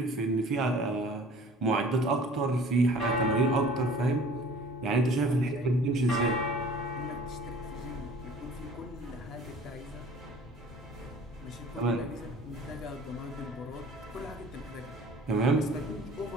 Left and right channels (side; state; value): both; normal; correlation 0.48